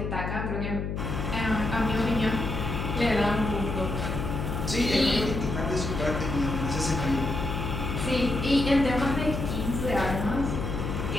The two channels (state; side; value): noise; left; hum, 3 dB below the sound